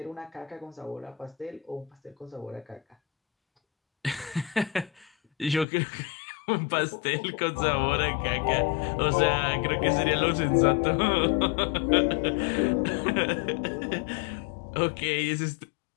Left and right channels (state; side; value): drops out; right; at 5.7 s